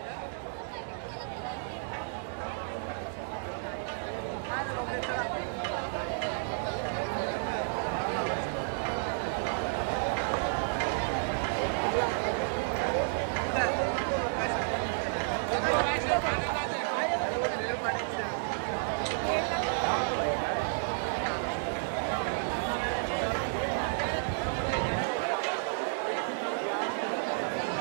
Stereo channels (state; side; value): silent; left; digital silence